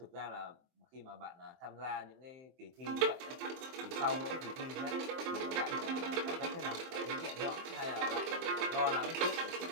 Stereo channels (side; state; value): left; late; 23 ms